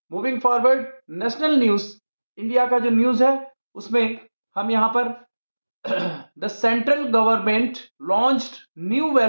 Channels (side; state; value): both; inverted; correlation -1.00